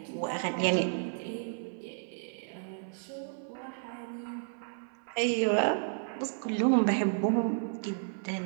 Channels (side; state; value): left; silent; 56 dB below the other